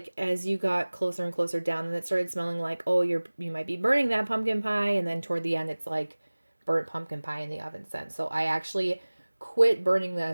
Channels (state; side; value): inverted; both; correlation -1.00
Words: as you got closer and closer down, and it started smelling like, oh, you might be burning that pumpkin pie. And then toward the end, it's like burnt pumpkin pie in the oven scent. So I actually quit burning